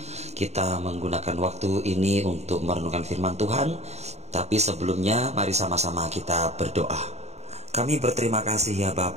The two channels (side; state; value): left; late; 0.32 ms